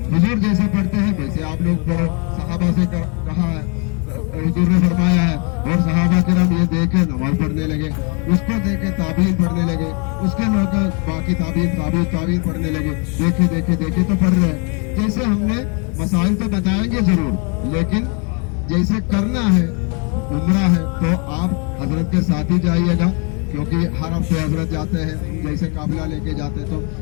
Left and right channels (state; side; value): quieter; right; 35.5 dB